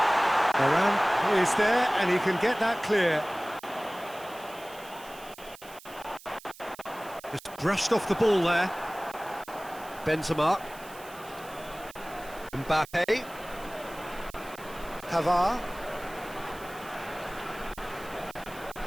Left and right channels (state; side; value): noise; right; hiss, 20 dB below the sound